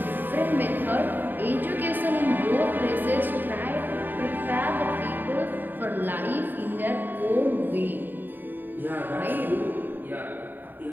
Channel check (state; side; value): late; left; 0.091 ms